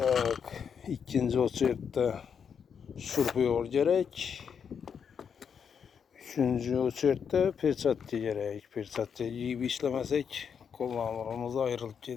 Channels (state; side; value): quieter; right; 7.0 dB